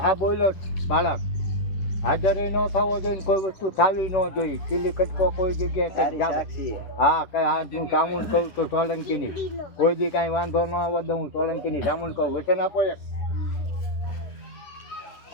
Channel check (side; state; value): right; late; 10 ms